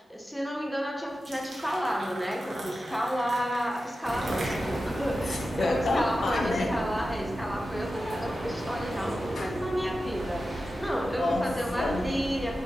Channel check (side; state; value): both; normal; correlation 0.92